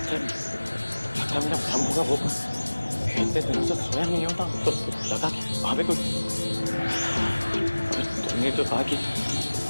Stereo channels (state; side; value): inverted; both; correlation -1.00